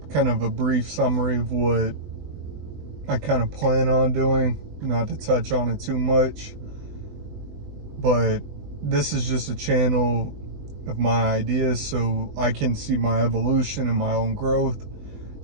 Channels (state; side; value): late; left; 20 ms